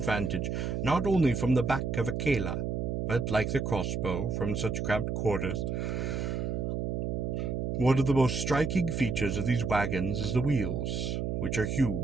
not only from the back of a kela, but, like the crossbow, from such cramped quarters. One of the most striking features of these wagons is the wheels, which are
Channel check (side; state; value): right; noise; hum, 1 dB below the sound